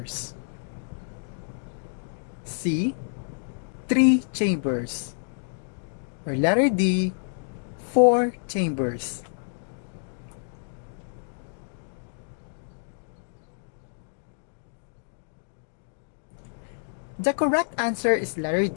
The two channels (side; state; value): right; silent; digital silence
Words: C, 3 chambers? Or letter D, 4 chambers? The correct answer is letter